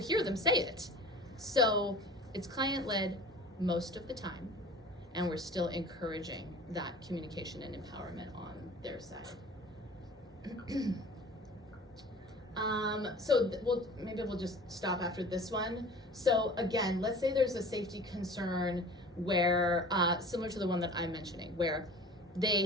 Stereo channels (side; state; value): both; normal; correlation 0.42